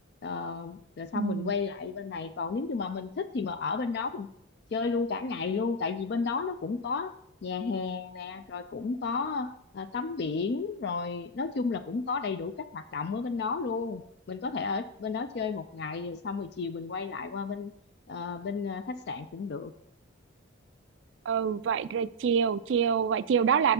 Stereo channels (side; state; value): both; normal; correlation -0.04